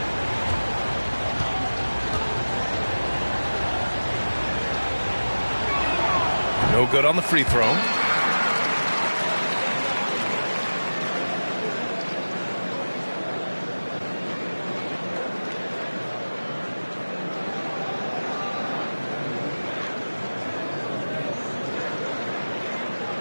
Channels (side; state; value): both; inverted; correlation -1.00